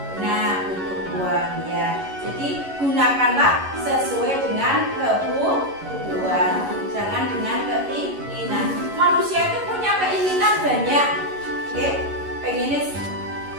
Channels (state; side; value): late; left; 11 ms